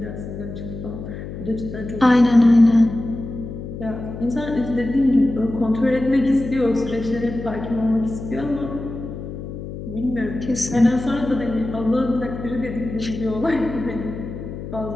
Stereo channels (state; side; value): noise; left; hum, 9 dB below the sound